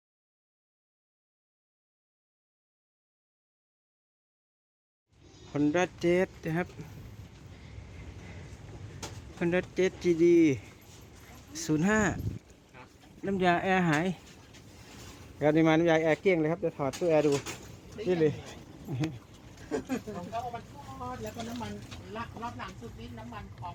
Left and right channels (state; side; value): identical; both; correlation 1.00